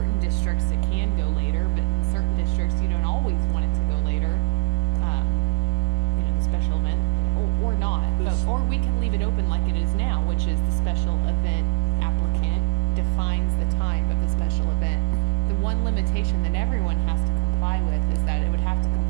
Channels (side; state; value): left; silent; 63 dB below the other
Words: districts it can go later, but in certain districts you don't always want it to go later. You know, the special event, or not, or we can leave it open like it is now, which is the special event applicant defines the time of the special event. The one limitation that everyone has to comply with is that it would have to